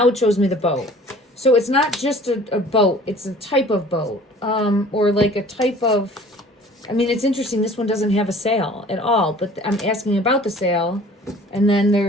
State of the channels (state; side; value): normal; both; correlation 0.49